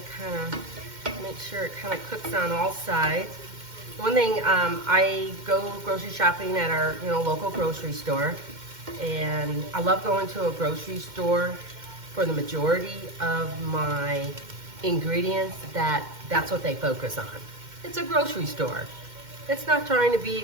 kind of make sure it kind of cooks on all sides. One thing, I go grocery shopping at our local grocery store, and I love going to a grocery store for the majority of my ingredients. That's what they focus on. It's a grocery store. It's not trying to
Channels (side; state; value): left; late; 2.1 ms